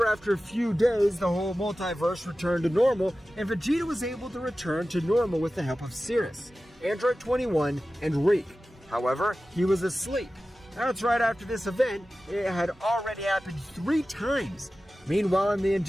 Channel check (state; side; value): normal; both; correlation 0.95